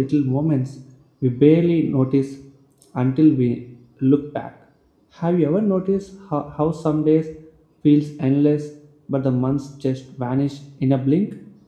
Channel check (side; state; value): both; identical; correlation 1.00